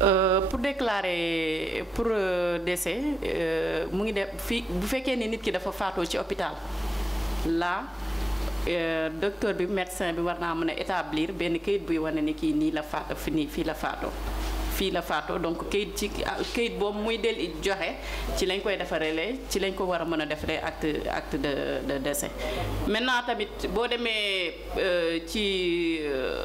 Pour déclarer pour décès mu ngi def fii bu fekkee ni nit ki dafa faatoo ci hôpital là docteur bi médecin bi war naa mën a établir benn kayit buy wane ni kii nii la faat fii la faatoo. fii la faatoo donc kayit boobu muy del joxe ci lañ koy defaree ci lañ ko war a mën a defaree acte de décès. maintenant tamit boo demee ci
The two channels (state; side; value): normal; both; correlation 0.93